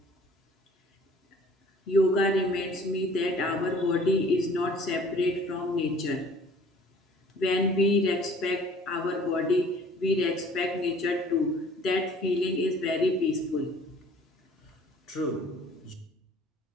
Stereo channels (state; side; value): normal; both; correlation 0.52